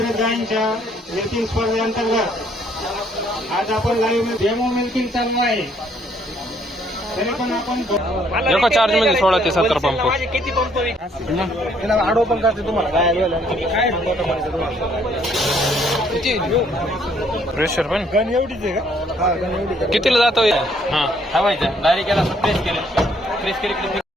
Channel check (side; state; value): both; normal; correlation 0.65